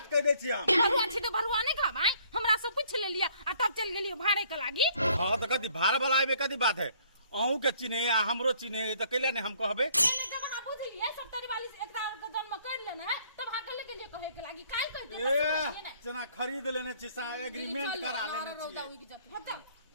कह दे छी हम भरुआ छी तो भरुआ नहीं खा भाई हमरा से पूछ ले लिया आ तब चल गेलियो भाड़े के लागी हां तो कथी भार वाला आबे कथी बात है अहू के चिन्हे आ हमरो चिन्हे तो कैला नहीं हम कहबे मैंने जब अहाँ बुझलिए 70 41 एकरा के जन्म कर लेने है तब अहाँ के लिए कहे के लागी काई कहते ए जना खरीद लेने छी सा एग्रीमेंट करा लेने छी बता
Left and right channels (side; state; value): both; inverted; correlation -0.61